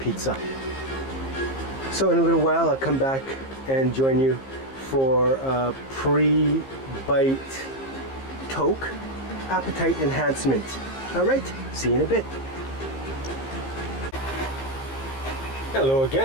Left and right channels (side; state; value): right; late; 15 ms